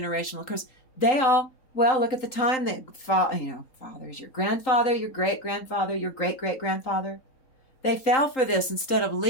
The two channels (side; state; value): right; late; 3.8 ms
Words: curse. Look at the time that, fathers, your grandfather, your great-grandfather, your great-great-grandfather. They fell for this instead of